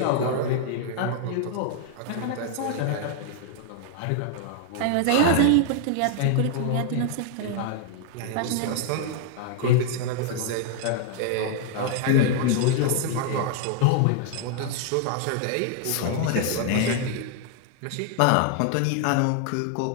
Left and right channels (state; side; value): different; both; correlation 0.00